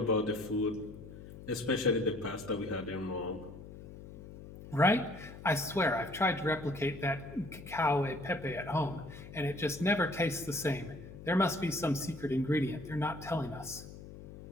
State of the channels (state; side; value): noise; left; hum, 14 dB below the sound